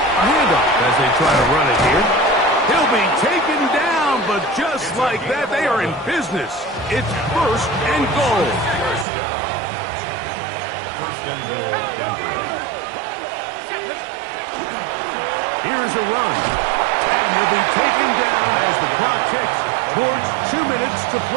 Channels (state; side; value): drops out; left; at 9.1 s